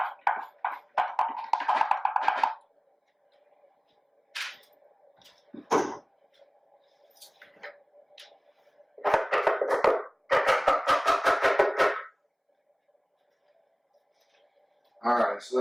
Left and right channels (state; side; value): identical; both; correlation 1.00